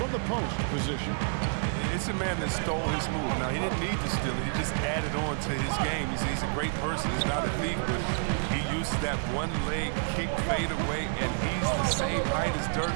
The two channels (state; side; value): silent; left; digital silence